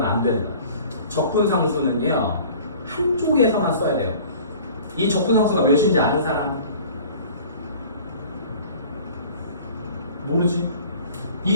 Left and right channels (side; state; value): both; inverted; correlation -0.47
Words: 안 된다. 적분상수는요 한쪽에서만 써야 돼요. 이 적분상수가 몇인지 아는 사람? 모르지?